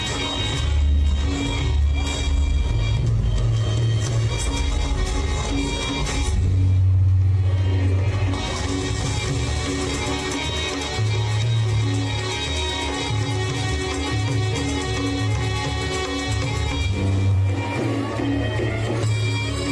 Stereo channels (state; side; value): identical; both; correlation 1.00